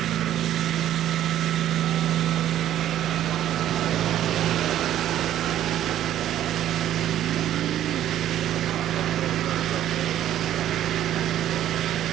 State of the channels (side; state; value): left; quieter; 12.0 dB